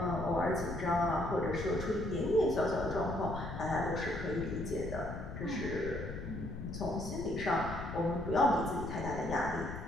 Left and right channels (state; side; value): noise; left; rumble, 8 dB below the sound